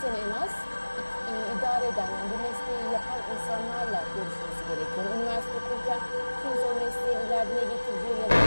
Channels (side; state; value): both; inverted; correlation -1.00